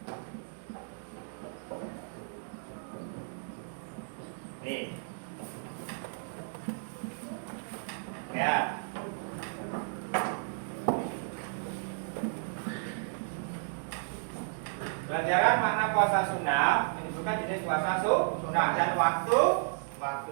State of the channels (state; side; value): silent; left; digital silence